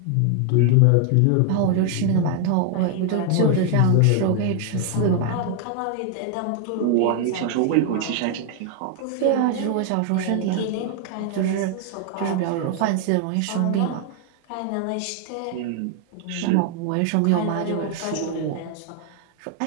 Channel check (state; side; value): different; both; correlation 0.00